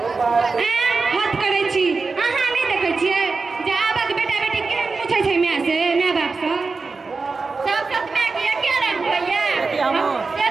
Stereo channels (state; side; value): quieter; left; 4.2 dB